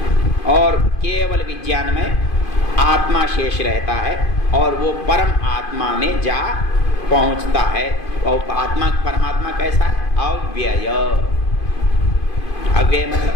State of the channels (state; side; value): late; right; 2.5 ms